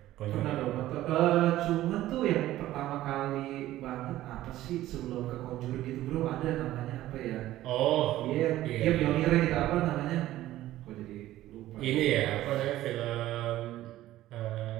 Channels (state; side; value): quieter; left; 14.7 dB